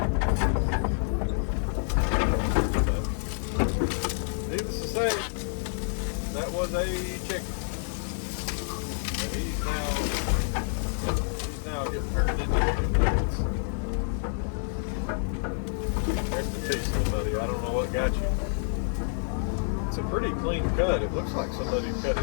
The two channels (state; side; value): silent; right; 59 dB below the other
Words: Needless to say, that was a chicken. And he's now getting turned into chicken. Rest in peace, buddy. I don't know what got you. It's a pretty clean cut. It looks like somebody cut